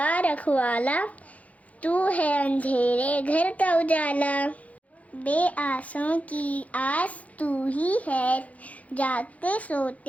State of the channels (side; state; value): right; late; 0.069 ms